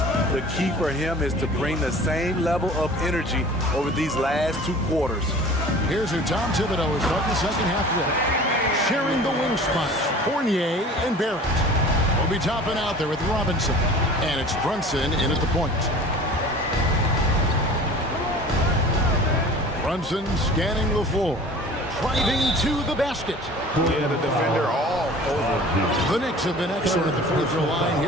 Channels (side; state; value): both; normal; correlation 0.43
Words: The key for him is to bring the same level of energy over these last 2 quarters. Here's who Tom Thibodeau is starting the second half with. Sharing the wing spots, Fournier and Barrett. Will be topping out there with Robinson. And it's Brunson in at the point. Brunson scanning the floor. Driving to the basket. Yeah, the defender all over. The Knicks have been excellent at the free throw line